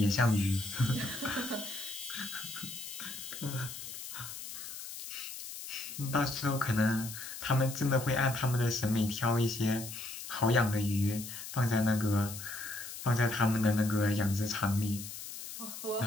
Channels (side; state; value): left; noise; hiss, 10 dB below the sound